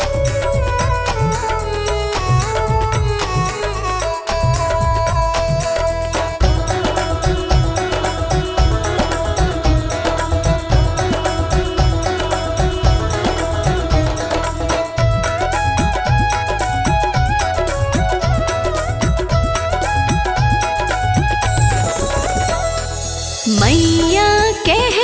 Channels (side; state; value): both; identical; correlation 1.00